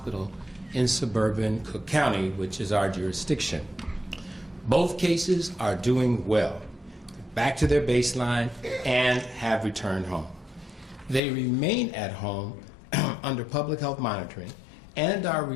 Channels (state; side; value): drops out; right; at 11.2 s